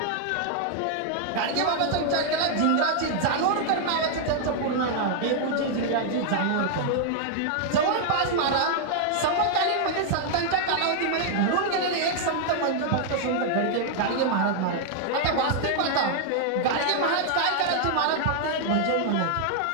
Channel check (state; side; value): different; both; correlation 0.00